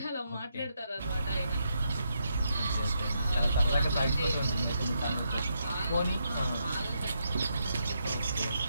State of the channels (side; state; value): both; inverted; correlation -0.80